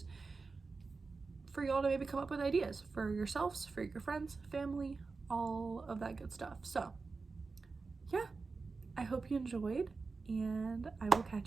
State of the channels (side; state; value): left; quieter; 4.2 dB